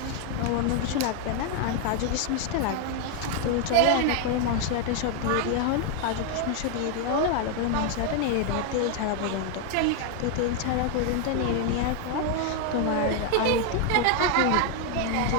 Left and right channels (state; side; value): different; both; correlation 0.01